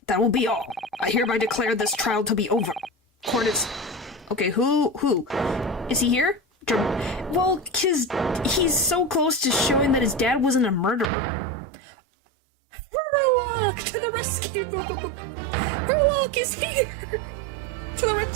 That will be all. I hereby declare this trial to be over. Court is... Okay, who? Is he here? Well, 'cause he's so close to showing that his dad wasn't a murderer. Herlock, to the rescue! Herlock is here! To the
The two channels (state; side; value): drops out; left; at 11.1 s